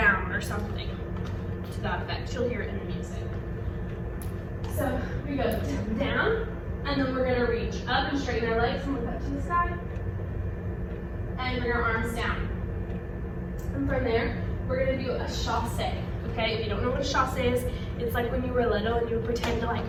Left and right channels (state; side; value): identical; both; correlation 1.00